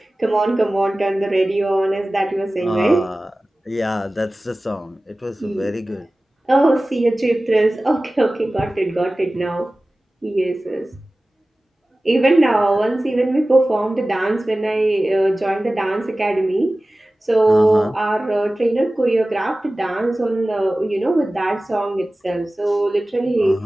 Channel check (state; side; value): normal; both; correlation 0.97